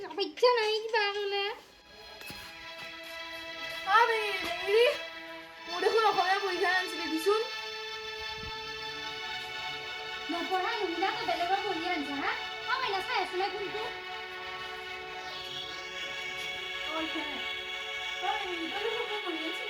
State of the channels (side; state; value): both; identical; correlation 1.00